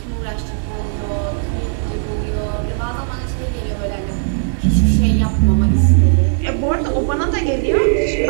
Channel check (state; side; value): silent; left; digital silence